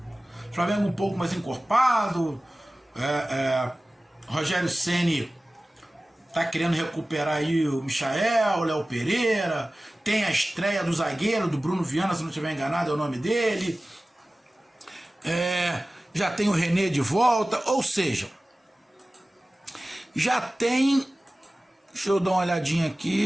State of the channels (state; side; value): normal; both; correlation 0.97